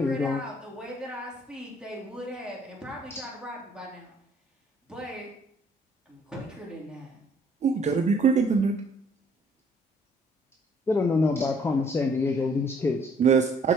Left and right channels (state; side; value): normal; both; correlation 0.61